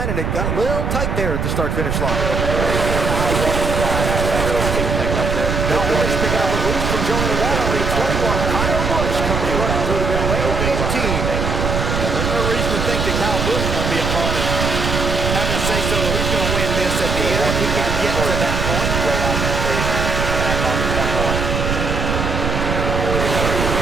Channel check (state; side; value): noise; right; rumble, 1 dB below the sound